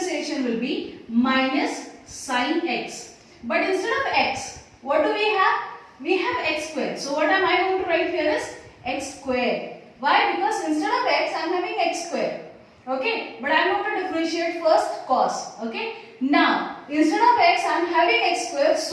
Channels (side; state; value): both; identical; correlation 1.00